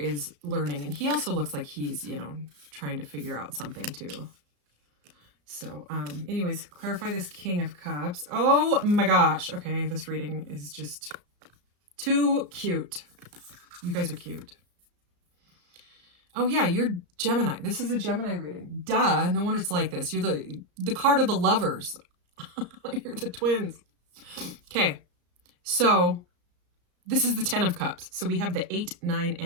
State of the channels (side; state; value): left; late; 34 ms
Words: learning, and he also looks like he's, you know, trying to figure out something too. So, anyways, clarify this King of Cups. Oh my gosh. Okay, this reading is just too cute. You guys are cute. Oh yeah, you're Gemini. This is a Gemini reading. Duh, no wonder it's like this. You're the card of the lovers. You're the twins. Okay, so this is the 10 of Cups. So we have the 8, 9,